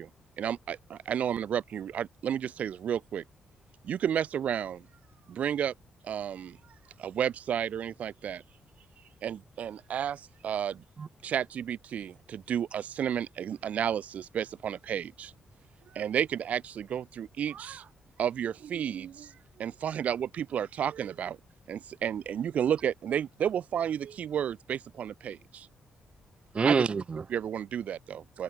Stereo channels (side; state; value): left; quieter; 8.1 dB